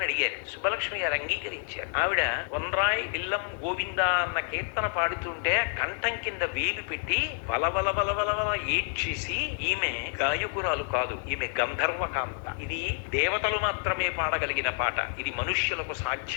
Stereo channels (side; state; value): right; silent; 59 dB below the other